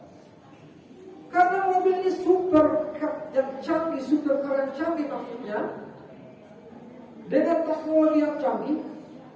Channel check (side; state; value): both; identical; correlation 1.00